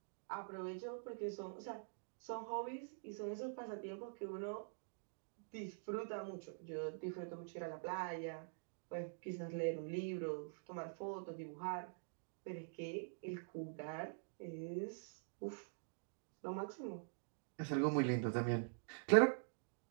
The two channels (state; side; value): silent; left; digital silence